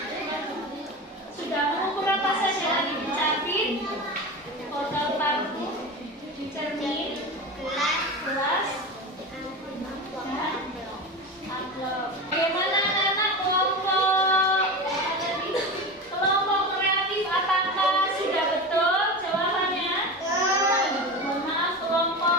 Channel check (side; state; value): both; normal; correlation 0.26